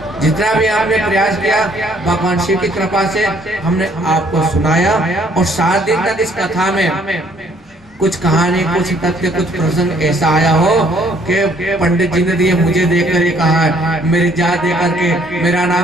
जितना भी हमने प्रयास किया भगवान शिव की कृपा से हमने आपको सुनाया और 7 दिन तक इस कथा में कुछ कहानी, कुछ तथ्य, कुछ प्रसंग ऐसा आया हो कि पंडित जी ने दिए मुझे देखकर ये कहा है, मेरी जात देकर के, मेरा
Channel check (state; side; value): normal; both; correlation 0.63